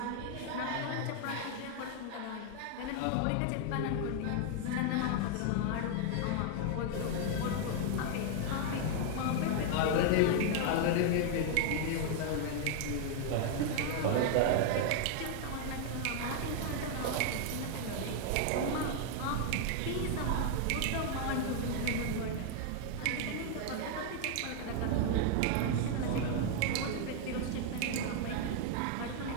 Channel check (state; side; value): different; both; correlation 0.00